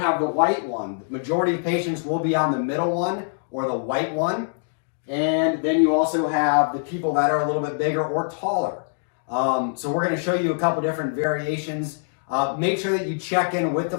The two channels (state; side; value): silent; right; digital silence